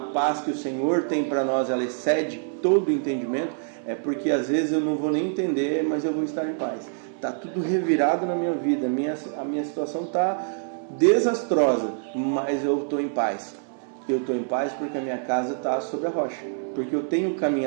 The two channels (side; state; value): left; silent; 61 dB below the other